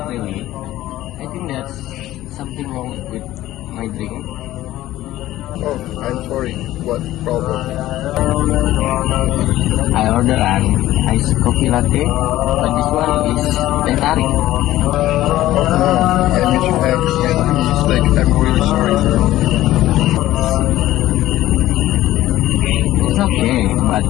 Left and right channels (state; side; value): quieter; right; 15.0 dB